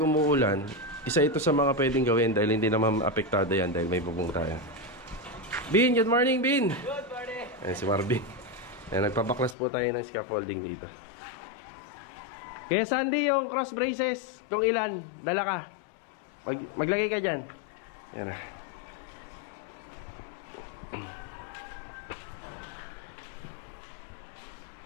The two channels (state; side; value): drops out; right; at 9.6 s